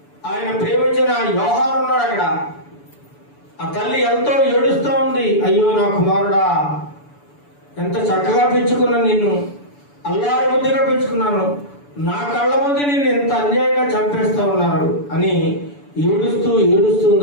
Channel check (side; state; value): right; late; 6.9 ms